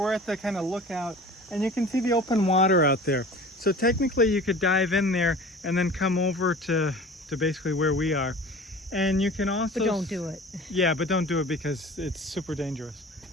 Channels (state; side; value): normal; both; correlation 0.41